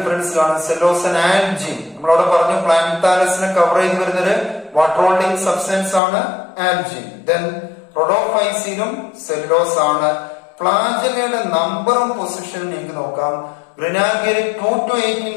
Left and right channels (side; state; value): right; drops out; at 6.0 s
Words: കാണും, സെല്ലോസ് ആൻഡ് ആൽജിൻ. നമ്മളവിടെ പറഞ്ഞു പ്ലാന്താലസിനെ കവർ ചെയ്ത് വരുന്നൊരു വാട്ടർ ഹോൾഡിംഗ് സബ്സ്റ്റൻസ് ആണ് ആൽജിൻ. ദെൻ റോഡോഫൈസിലും സെല്ലുലോസ് ആണ്. ഫ്ലാജെല്ലയുടെ നമ്പറും പൊസിഷനും നിങ്ങൾക്ക് നോക്കാം. ഗ്രെനാൽഗയിൽ 2 to 18